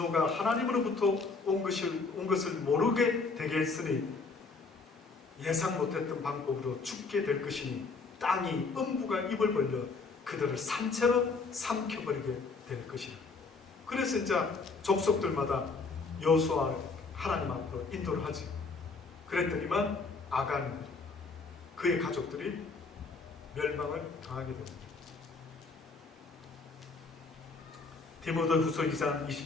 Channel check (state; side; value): quieter; right; 4.3 dB